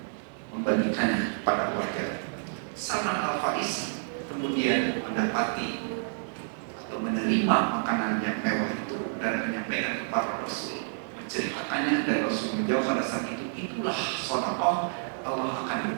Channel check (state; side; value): silent; left; digital silence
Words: membagikannya kepada warga. Salman Al-Farisi kemudian mendapati atau menerima makanan yang mewah itu dan menyampaikan kepada Rasul, menceritakannya, dan Rasul menjawab pada saat itu, itulah sedekah, Allah